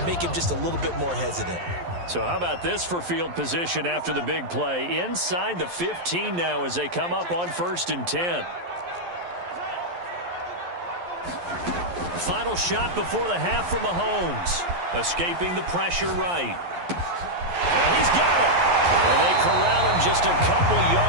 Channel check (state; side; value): late; left; 11 ms